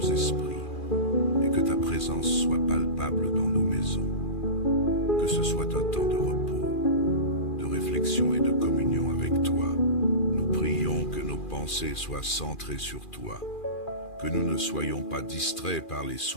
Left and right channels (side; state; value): right; late; 2.4 ms